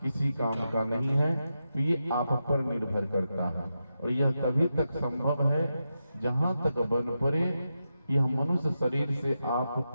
किसी काम का नहीं है। तो ये आप पर निर्भर करता है, और यह तभी तक संभव है जहां तक बन पड़े यह मनुष्य शरीर से आप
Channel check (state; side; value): inverted; both; correlation -0.88